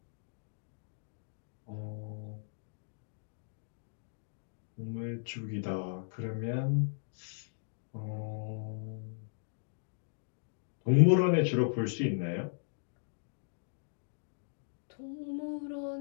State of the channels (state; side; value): silent; right; digital silence